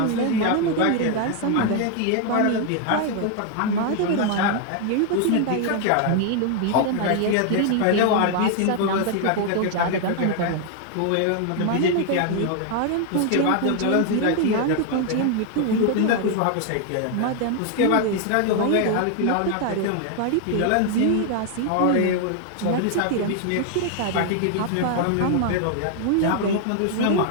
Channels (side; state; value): both; different; correlation 0.00